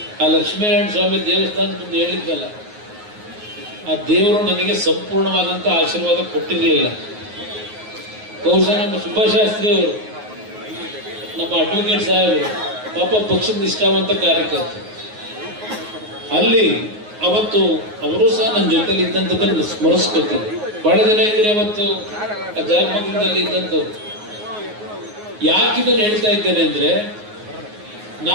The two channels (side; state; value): left; late; 9.5 ms